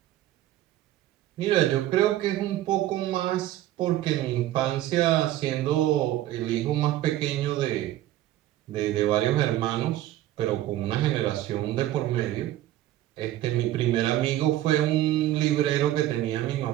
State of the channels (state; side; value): quieter; left; 14.1 dB